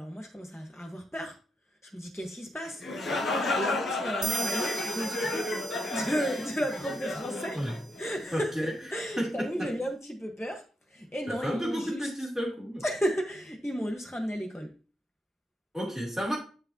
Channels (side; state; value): both; normal; correlation 0.81